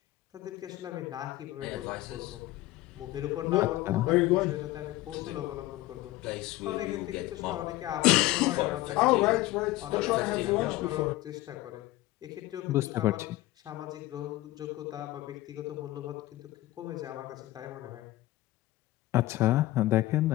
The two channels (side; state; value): right; quieter; 17.4 dB